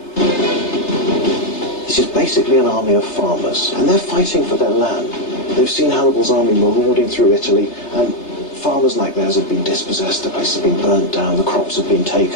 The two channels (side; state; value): right; late; 3.3 ms